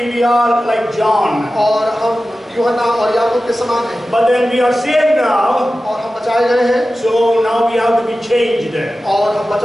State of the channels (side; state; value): both; normal; correlation 0.95